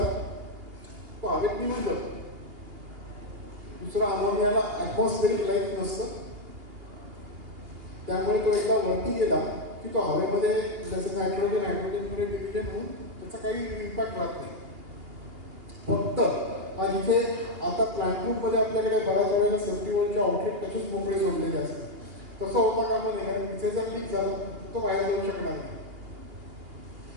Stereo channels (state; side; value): late; left; 2.8 ms